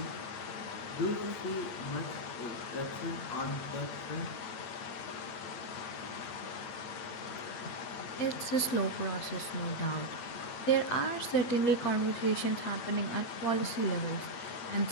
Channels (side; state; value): right; late; 8.5 ms